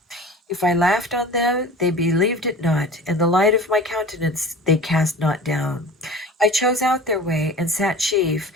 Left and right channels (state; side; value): normal; both; correlation 0.39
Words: If I laughed on them, they believed it not, and the light of my countenance they cast not down. I chose out their way, and sat chief,